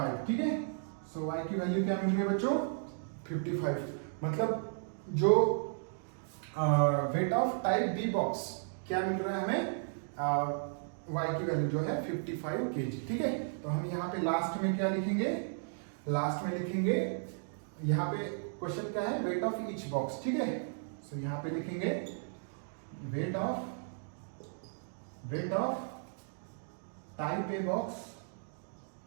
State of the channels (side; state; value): left; silent; digital silence